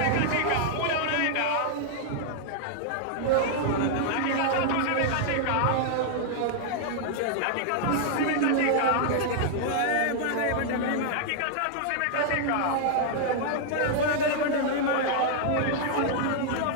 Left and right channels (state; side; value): different; both; correlation -0.01